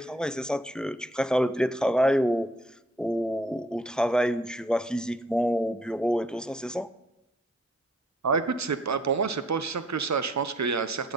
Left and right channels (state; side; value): normal; both; correlation 0.63